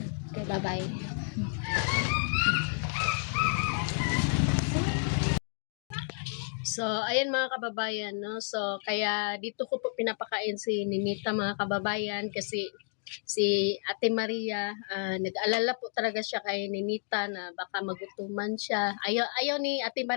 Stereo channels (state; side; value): silent; right; 57 dB below the other